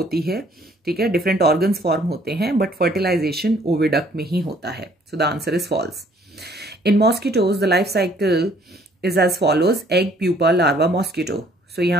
है, ठीक है, डिफरेंट ऑर्गन्स फॉर्म होते हैं, बट फर्टिलाइजेशन ओविडक्ट में ही होता है. So the answer is false. In mosquitoes, the life cycle is as follows: egg, pupa, larva, mosquito. So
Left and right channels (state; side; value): normal; both; correlation 0.61